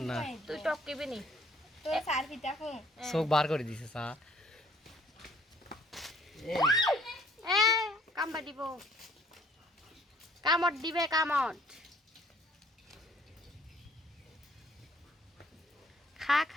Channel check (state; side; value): normal; both; correlation 0.60